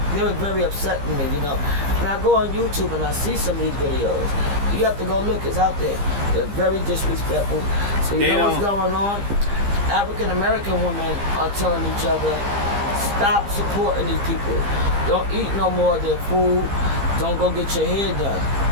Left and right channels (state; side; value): late; left; 15 ms